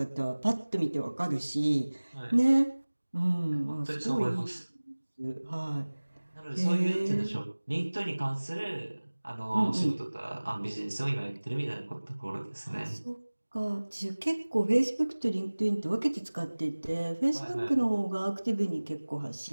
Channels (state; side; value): inverted; both; correlation -1.00